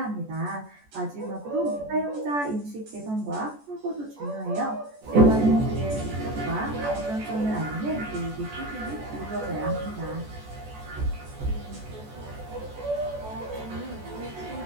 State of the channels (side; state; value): left; late; 14 ms